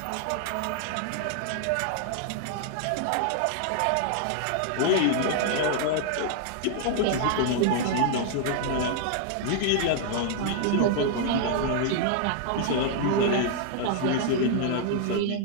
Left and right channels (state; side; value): different; both; correlation -0.01